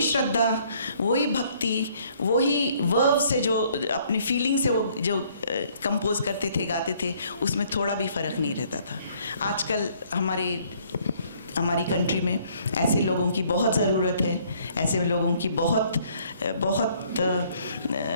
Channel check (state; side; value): inverted; both; correlation -0.62